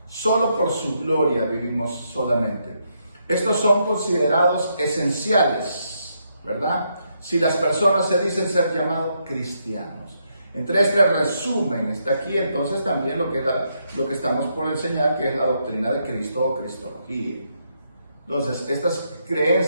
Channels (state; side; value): inverted; both; correlation -0.78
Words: solo por su gloria vivimos solamente. Estos son considerados esenciales, ¿verdad? Si las personas se dicen ser llamados cristianos. Entre este resumen está aquí entonces también lo que estamos por enseñar, que es la doctrina de Cristo o Cristología. Entonces, estas